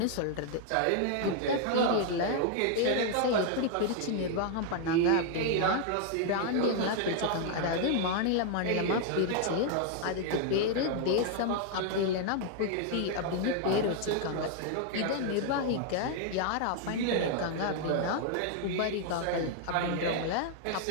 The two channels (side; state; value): both; different; correlation 0.00